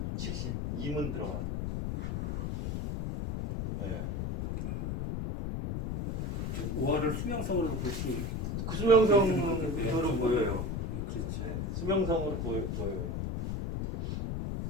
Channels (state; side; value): noise; left; rumble, 2 dB below the sound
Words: 50, 72문 들어가는. 네. 오화를 수명성으로 볼 수. 그 수명성으로 보여요. 그렇죠. 네, 수명성으로 보여요.